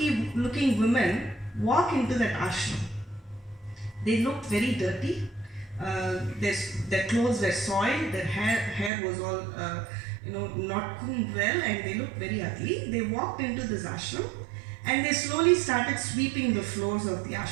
women walk into that ashram. They looked very dirty. Their clothes were soiled, their hair was all not combed well, and they looked very ugly. They walked into this ashram and they slowly started sweeping the floors of the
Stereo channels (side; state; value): left; drops out; at 8.9 s